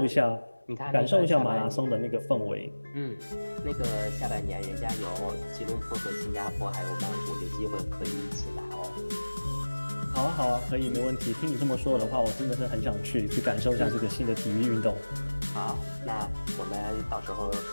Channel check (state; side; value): inverted; both; correlation -1.00